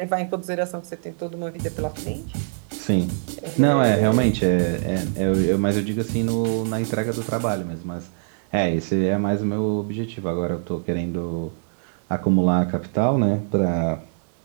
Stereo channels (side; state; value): left; silent; digital silence